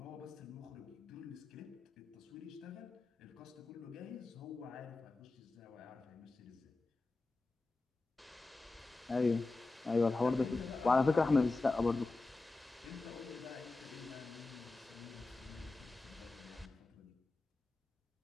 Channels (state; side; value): quieter; right; 3.4 dB